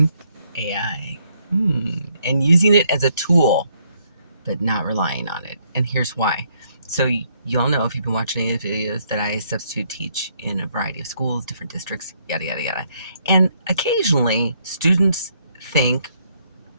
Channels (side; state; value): both; inverted; correlation -0.71